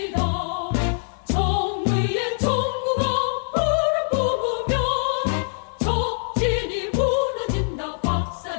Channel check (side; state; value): right; silent; 63 dB below the other